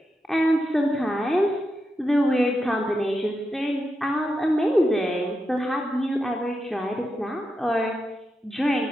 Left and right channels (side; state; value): both; normal; correlation 0.87